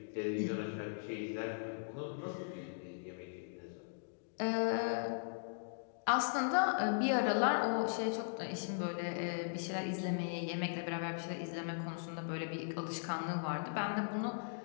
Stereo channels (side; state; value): right; silent; digital silence